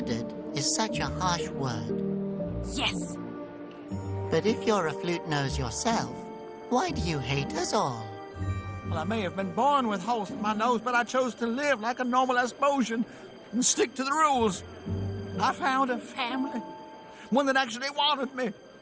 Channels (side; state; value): both; identical; correlation 1.00